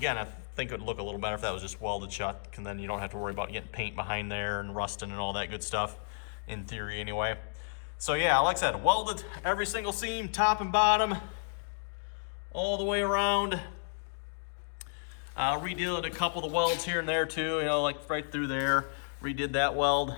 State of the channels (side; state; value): right; silent; digital silence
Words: I think it would look a little better if that was just welded shut, and then you don't have to worry about getting paint behind there and rusting and all that good stuff. In theory, anyway. So yeah, like I said, welded every single seam, top and bottom, all the way around. Redid a couple of the welds here and there too, like right through there. Redid that weld,